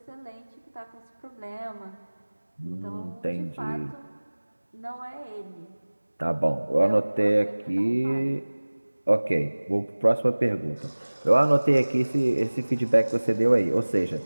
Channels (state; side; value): inverted; both; correlation -1.00